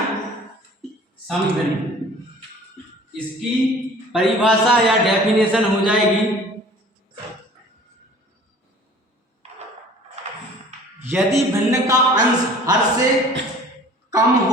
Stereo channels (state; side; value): normal; both; correlation 0.48